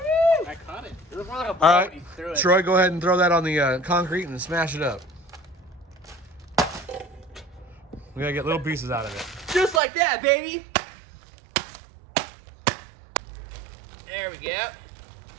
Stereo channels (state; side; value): drops out; left; at 9.8 s